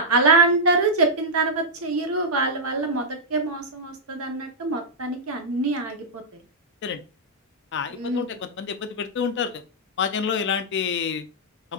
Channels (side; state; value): both; normal; correlation -0.08